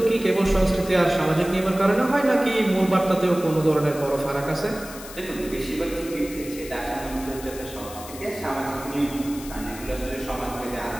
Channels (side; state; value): left; noise; hiss, 14 dB below the sound